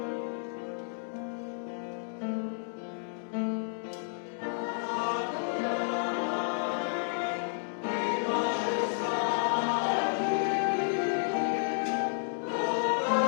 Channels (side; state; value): right; silent; digital silence